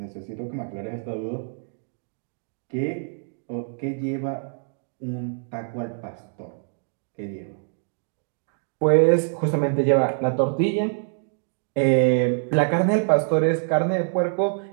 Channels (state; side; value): silent; left; digital silence